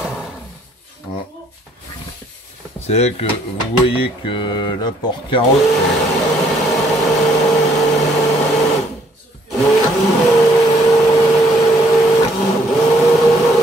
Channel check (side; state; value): both; normal; correlation 0.65